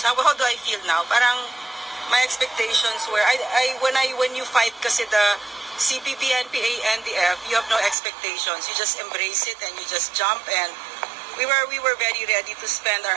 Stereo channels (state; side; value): drops out; left; at 8.0 s